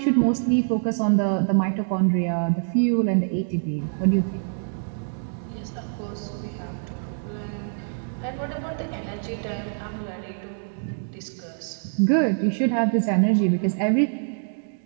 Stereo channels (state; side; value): silent; left; digital silence